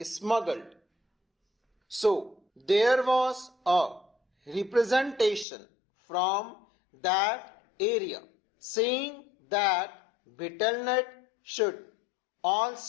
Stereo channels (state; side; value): drops out; right; at 5.5 s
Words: smuggled. So there was a representation from that area saying that betel nut should